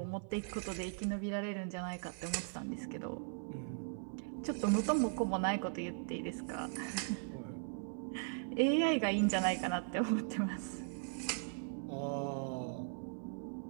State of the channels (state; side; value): silent; left; 52 dB below the other